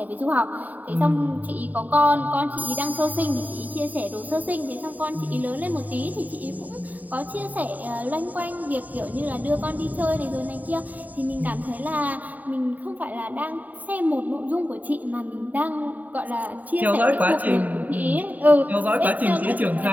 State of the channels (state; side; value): late; left; 0.079 ms